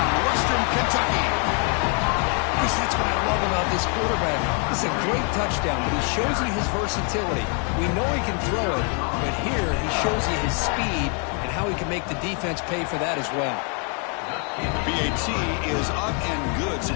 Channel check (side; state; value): right; quieter; 39.5 dB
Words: Western Kentucky. Chris, that's what I love about this quarterback. It's a great touchdown, but he shows you his versatility. We know he can throw it, but here he shows you his speed and how he can make the defense pay for that as well. BAT is up and good, so